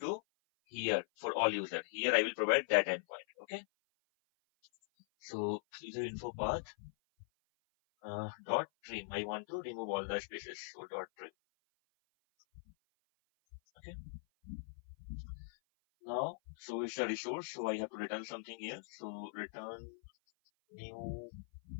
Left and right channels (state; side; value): silent; right; 51 dB below the other